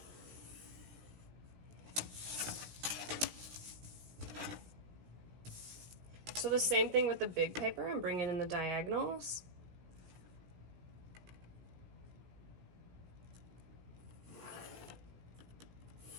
So the same thing with the big paper, I'm bringing in the diagonals.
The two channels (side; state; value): left; late; 17 ms